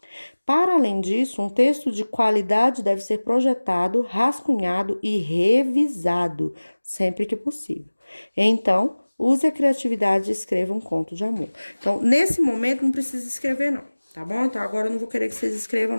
Para além disso, um texto de qualidade deve ser projetado, rascunhado e revisado sempre que possível. Então, use a criatividade e escreva um conto de amor. Então, nesse momento, não precisa escrever, não, tá bom? Então, agora eu não vou querer que vocês escrevam,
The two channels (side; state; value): both; inverted; correlation -1.00